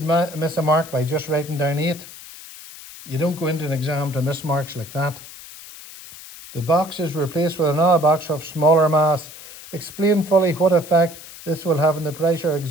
miss a mark by just writing down 8. You don't go into an exam to miss marks like that. The box is replaced with another box of smaller mass. Explain fully what effect this will have on the pressure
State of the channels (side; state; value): left; noise; hiss, 16 dB below the sound